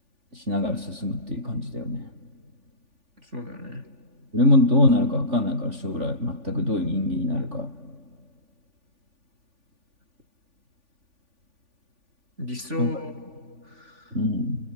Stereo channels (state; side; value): late; left; 3.5 ms